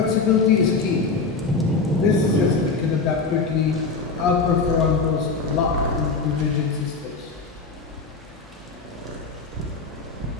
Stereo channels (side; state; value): right; quieter; 4.3 dB